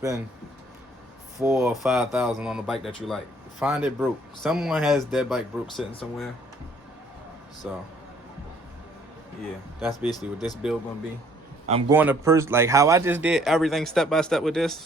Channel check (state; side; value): normal; both; correlation 0.60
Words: $4,000 or $5,000 on a bike that you like. Find it broke. Someone has that bike broke sitting somewhere. So yeah, that's basically what this build gonna be. I'm going to like how I just did everything step by step with